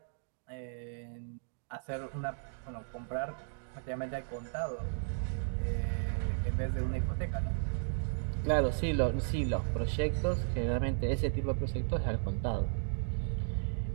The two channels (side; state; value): left; silent; digital silence